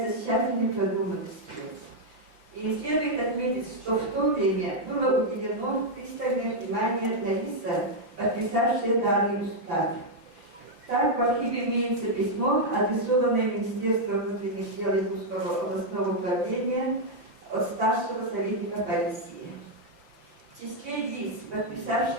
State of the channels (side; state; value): left; late; 5.9 ms